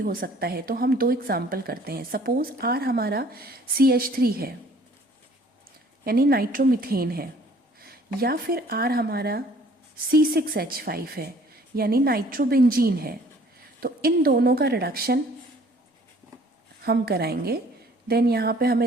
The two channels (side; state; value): both; normal; correlation 0.56